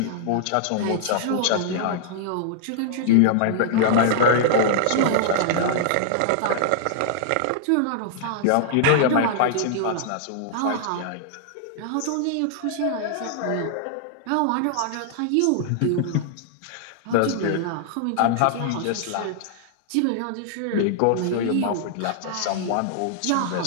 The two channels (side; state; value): both; different; correlation -0.01